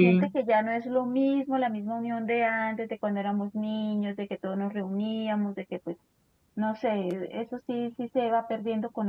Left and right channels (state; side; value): identical; both; correlation 1.00